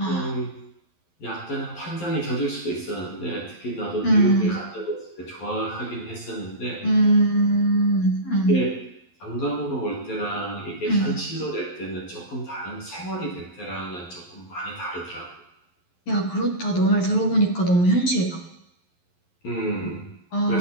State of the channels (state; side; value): late; right; 11 ms